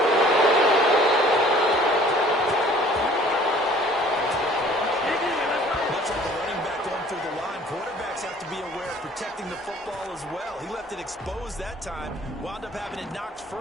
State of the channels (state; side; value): normal; both; correlation 0.53